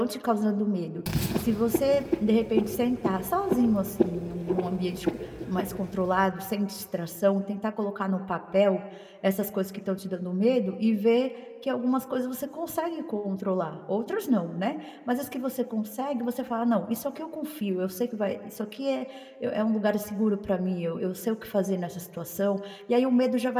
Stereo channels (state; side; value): identical; both; correlation 1.00